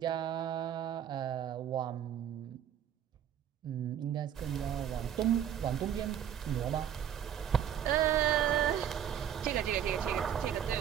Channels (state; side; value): quieter; left; 9.7 dB